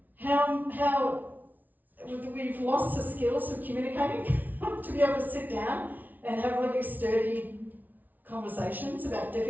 how we've lost the skills of communicating to be able to sit down and have really sturdy conversations about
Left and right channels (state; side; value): late; left; 0.080 ms